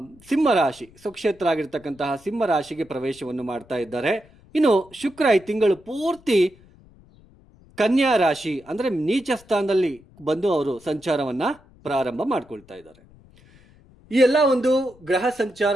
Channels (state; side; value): noise; left; rumble, 27 dB below the sound